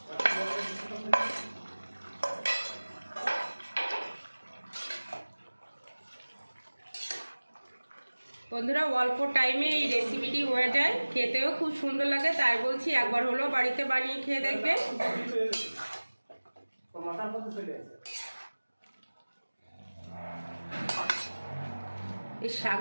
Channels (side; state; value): both; inverted; correlation -1.00